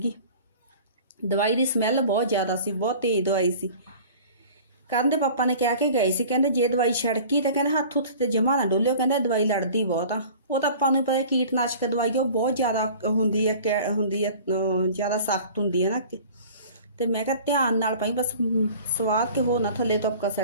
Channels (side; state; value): both; inverted; correlation -0.44